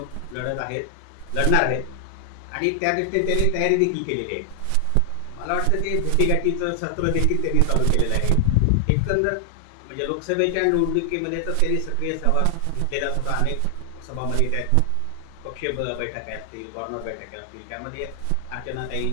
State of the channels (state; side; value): different; both; correlation 0.00